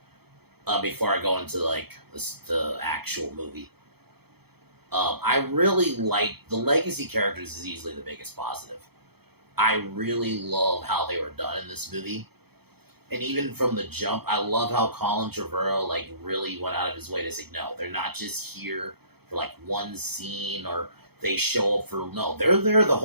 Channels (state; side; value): late; left; 0.97 ms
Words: before I go into the actual movie. I really like the legacy characters is easily the biggest positive. I really love how they were done in this movie. And even from the jump, I love how Colin Trevorrow really went out of his way to say, no, they're not just here for one scene or they show up for, no, they're there the